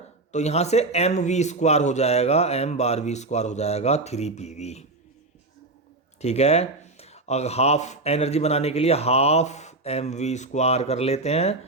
तो यहाँ से mv² हो जाएगा, m/v² हो जाएगा 3pv, ठीक है। अगर हाफ एनर्जी बनाने के लिए हाफ mv² कर लेते हैं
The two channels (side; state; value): left; quieter; 3.0 dB